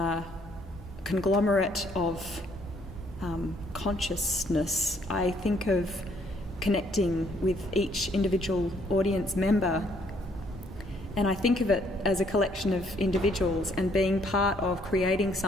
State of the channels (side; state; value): both; normal; correlation 0.66